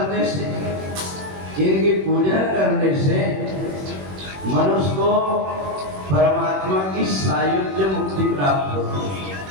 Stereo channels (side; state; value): left; late; 21 ms